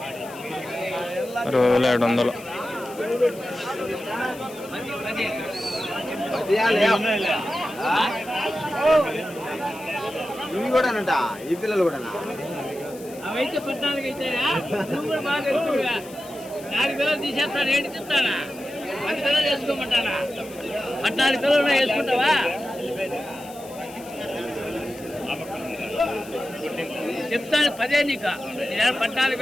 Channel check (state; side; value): noise; left; hiss, 19 dB below the sound